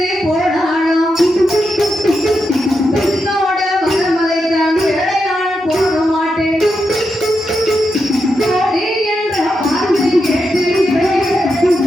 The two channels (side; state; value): both; normal; correlation 0.86